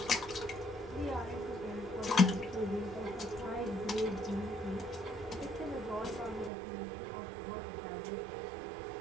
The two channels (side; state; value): left; drops out; at 6.5 s